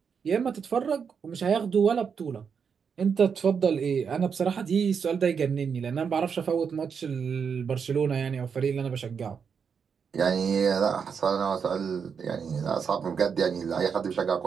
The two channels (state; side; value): quieter; left; 6.5 dB